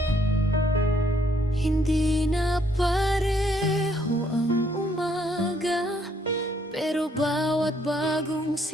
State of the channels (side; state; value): both; normal; correlation 0.69